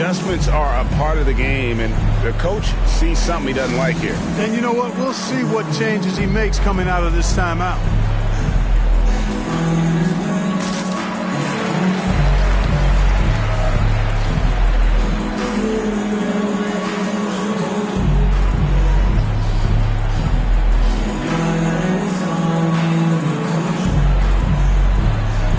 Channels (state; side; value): identical; both; correlation 1.00